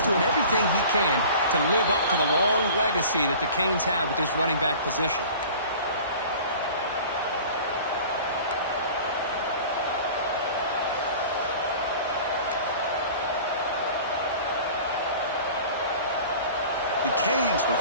doing everything he can to live up to the long legacy that the Canes have with this running back position. The Canes with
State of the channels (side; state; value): both; inverted; correlation -0.42